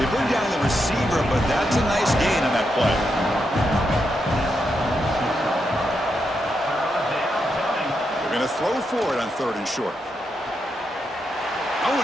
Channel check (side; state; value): both; normal; correlation 0.83